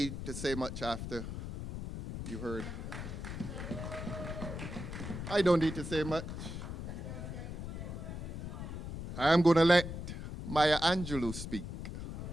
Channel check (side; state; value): left; noise; rumble, 6 dB below the sound